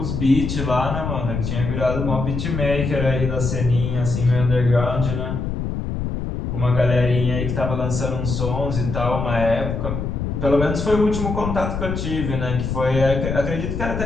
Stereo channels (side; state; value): left; noise; rumble, 3 dB below the sound